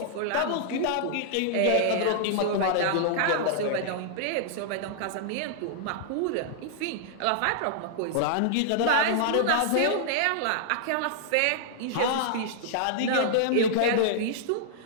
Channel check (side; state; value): both; different; correlation -0.01